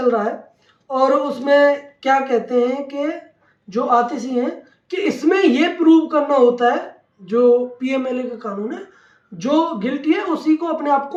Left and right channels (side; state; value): both; identical; correlation 1.00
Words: रहा है, और उसमें क्या कहते हैं कि जो आतिशी हैं कि इसमें ये प्रूव करना होता है, जो पीएमएलए का कानून है, जो गिल्टी है उसी को अपने आप